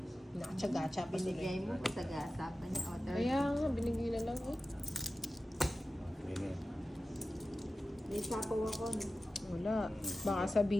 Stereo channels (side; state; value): both; normal; correlation 0.94